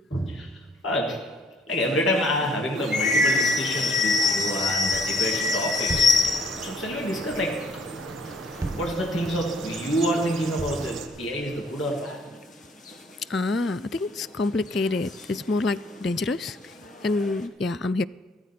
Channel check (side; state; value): both; normal; correlation 0.62